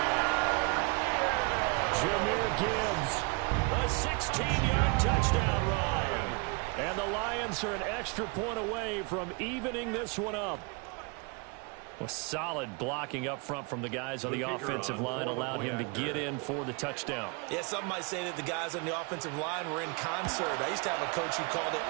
Jahmyr Gibbs, a 16-yard touchdown run. And the Lions are an extra point away from evening this one up. Well, solid blocking up front from the guys on the offensive line allowed him to get in for the touchdown. Yeah, some might say that the guys on the offensive line were in concert. I used to have a coach who called it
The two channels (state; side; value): quieter; left; 29.9 dB